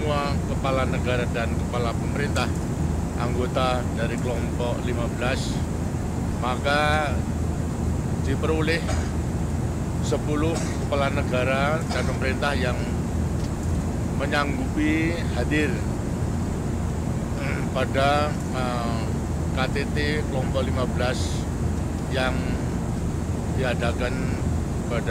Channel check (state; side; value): identical; both; correlation 1.00